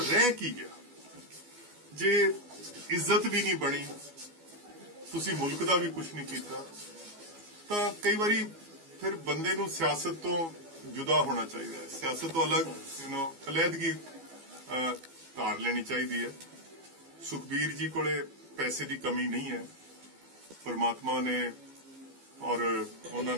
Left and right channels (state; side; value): late; left; 12 ms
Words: ਕੀ ਗਿਆ? ਜੇ ਇੱਜ਼ਤ ਵੀ ਨਹੀਂ ਬਣੀ, ਤੁਸੀਂ ਮੁਲਕ ਦਾ ਵੀ ਕੁਝ ਨਹੀਂ ਕੀਤਾ ਤਾਂ ਕਈ ਵਾਰੀ ਫਿਰ ਬੰਦੇ ਨੂੰ ਸਿਆਸਤ ਤੋਂ ਜੁਦਾ ਹੋਣਾ ਚਾਹੀਦਾ ਹੈ, ਸਿਆਸਤ ਤੋਂ ਅਲੱਗ ਅਲੱਦਗੀ ਧਾਰ ਲੈਣੀ ਚਾਹੀਦੀ ਹੈ। ਸੁਖਬੀਰ ਜੀ ਕੋਲੇ ਪੈਸੇ ਦੀ ਕਮੀ ਨਹੀਂ ਹੈ, ਪਰਮਾਤਮਾ ਨੇ और